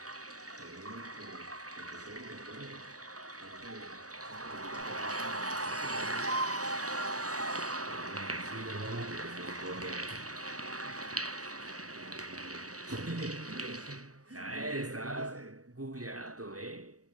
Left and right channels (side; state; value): left; late; 0.66 ms